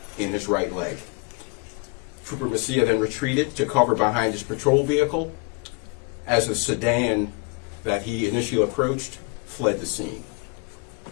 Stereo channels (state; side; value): quieter; right; 30.5 dB